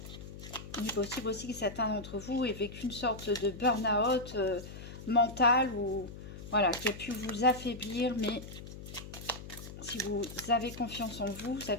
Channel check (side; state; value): left; noise; hum, 12 dB below the sound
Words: Il est possible aussi que certains d'entre vous aient vécu une sorte de burn-out mental ou voilà, qui a pu vous affaiblir, mais si vous avez confiance en vous, vous